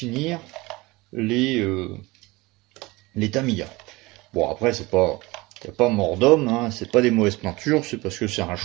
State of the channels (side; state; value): left; quieter; 22.2 dB